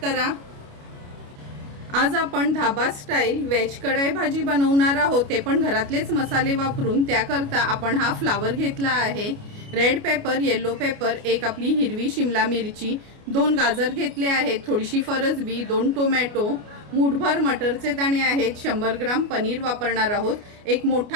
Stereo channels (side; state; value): left; late; 29 ms